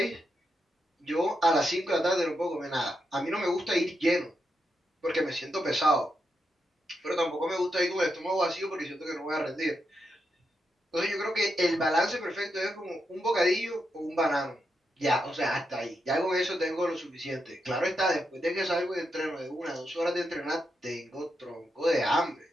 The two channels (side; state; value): both; normal; correlation 0.84